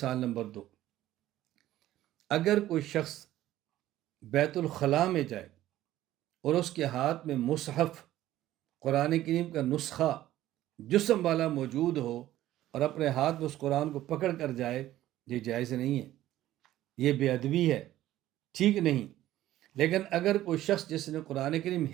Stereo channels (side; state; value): left; quieter; 14.2 dB